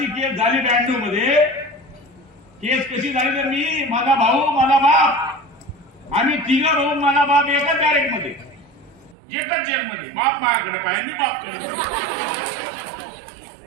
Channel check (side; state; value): left; drops out; at 9.2 s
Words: केस झाली 92 मध्ये। केस कशी झाली तर मी, माझा भाऊ, माझा बाप, आम्ही 3 भाऊ, माझा बाप एकाच बॅरेक मध्ये, एकच जेल मध्ये। बाप माझ्याकडे पाहिजे, मी बापकडे।